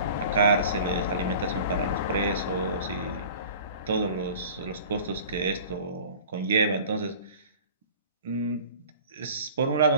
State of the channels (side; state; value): both; inverted; correlation -0.43